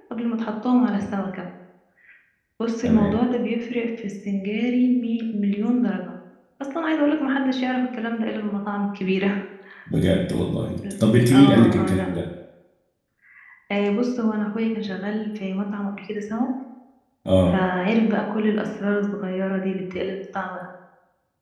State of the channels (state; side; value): identical; both; correlation 1.00